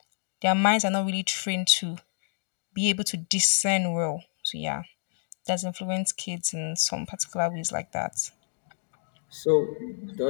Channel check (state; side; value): silent; right; digital silence